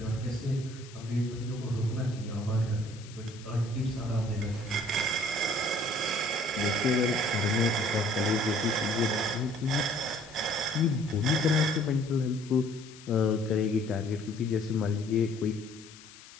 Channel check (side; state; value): left; noise; hiss, 19 dB below the sound